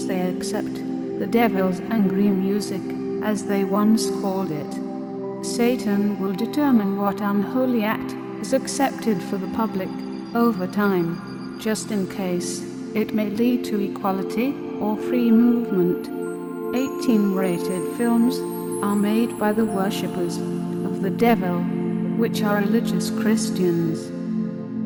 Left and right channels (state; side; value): identical; both; correlation 1.00